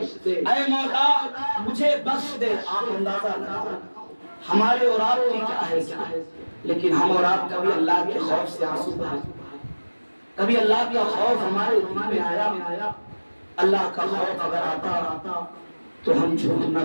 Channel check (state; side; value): inverted; both; correlation -1.00